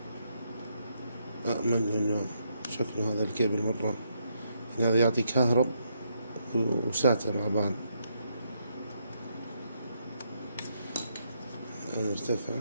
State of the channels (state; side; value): inverted; both; correlation -0.77